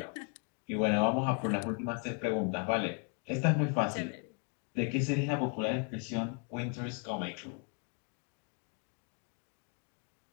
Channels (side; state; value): right; quieter; 36.2 dB